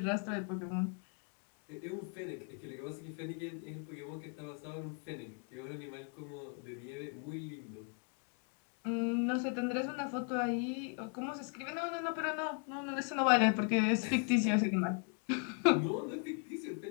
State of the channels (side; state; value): right; quieter; 39.2 dB